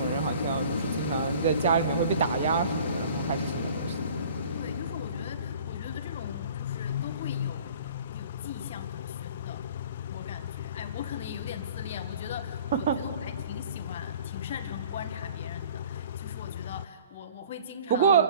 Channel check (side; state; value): both; inverted; correlation -0.48